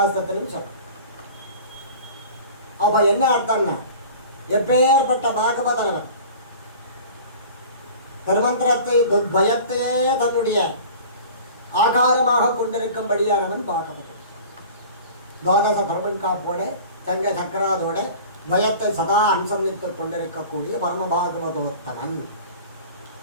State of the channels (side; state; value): both; inverted; correlation -0.41